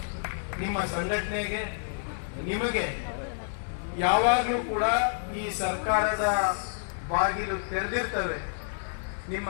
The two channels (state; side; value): silent; right; 59 dB below the other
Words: ನಿಮ್ಮ ಸಂಘಟನೆಗೆ ನಿಮಗೆ ಯಾವಾಗಲೂ ಕೂಡ ಈ ಸರ್ಕಾರದ ಬಾಗಿಲು ತೆರೆದಿರ್ತವೆ. ನಿಮ್ಮ